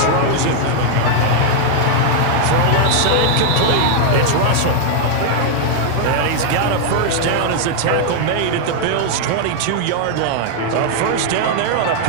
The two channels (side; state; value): both; different; correlation 0.00